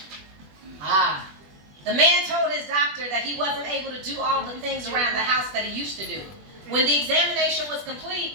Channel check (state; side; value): late; left; 20 ms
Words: The man told his doctor that he wasn't able to do all the things around the house that he used to do. When the examination was complete,